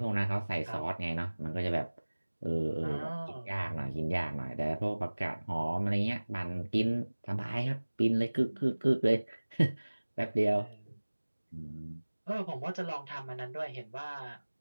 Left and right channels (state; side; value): inverted; both; correlation -1.00